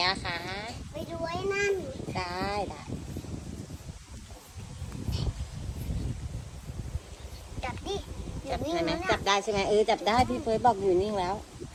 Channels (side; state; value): both; identical; correlation 1.00